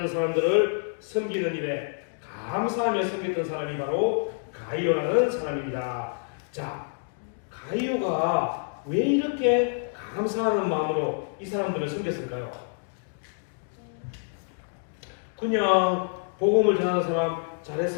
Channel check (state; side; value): silent; right; digital silence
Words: 사람들을 섬기는 일에 감사하며 섬겼던 사람이 바로 가이오라는 사람입니다. 자, 가이오가 왜 이렇게 감사하는 마음으로 이 사람들을 섬겼을까요? 그냥 복음을 전하는 사람